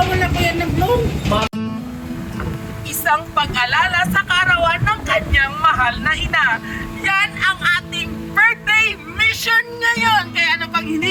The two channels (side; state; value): both; identical; correlation 1.00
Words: ko yan nag-loan. Isang pag-alala sa karawan ng kanyang mahal na ina. Yan ang ating birthday mission ngayon. Kaya ano pang